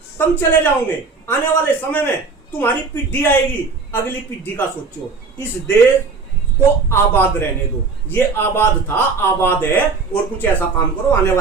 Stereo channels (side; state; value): left; quieter; 4.5 dB